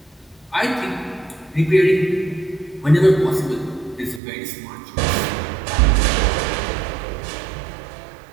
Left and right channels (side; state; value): left; drops out; at 4.2 s